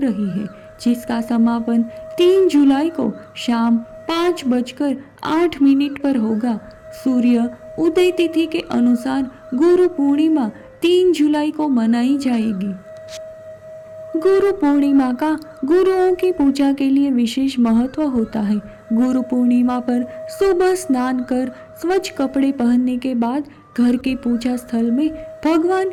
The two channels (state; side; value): identical; both; correlation 1.00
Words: है, जिसका समापन 3 जुलाई को शाम 5:08 पर होगा। सूर्य उदय तिथि के अनुसार गुरु पूर्णिमा 3 जुलाई को मनाई जाएगी। गुरु पूर्णिमा का गुरुओं की पूजा के लिए विशेष महत्व होता है। गुरु पूर्णिमा पर सुबह स्नान कर स्वच्छ कपड़े पहनने के बाद घर के पूजा स्थल में भगवान